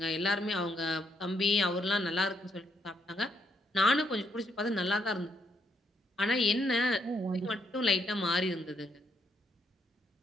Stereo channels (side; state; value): both; normal; correlation 0.75